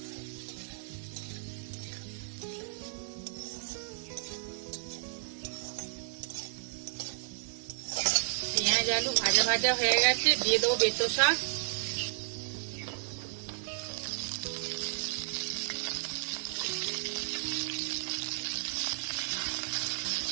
পেঁয়াজ আলু ভাজা ভাজা হয়ে গেছে, দিয়ে দেবো বেতো শাক।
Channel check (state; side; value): silent; left; digital silence